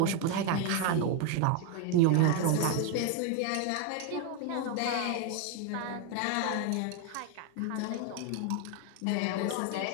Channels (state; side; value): different; both; correlation 0.01